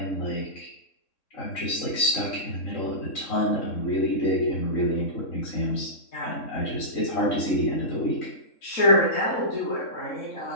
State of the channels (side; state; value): right; late; 3.6 ms